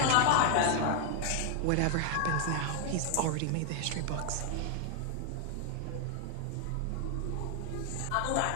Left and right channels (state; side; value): different; both; correlation 0.00